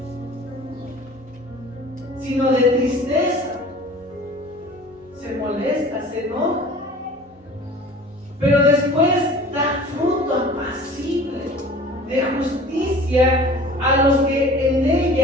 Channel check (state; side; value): normal; both; correlation 0.44